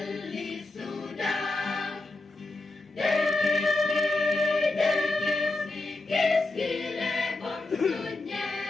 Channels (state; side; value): quieter; right; 3.0 dB